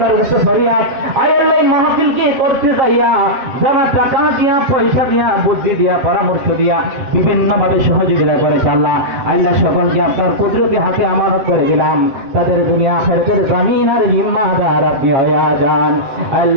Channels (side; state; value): left; late; 7.5 ms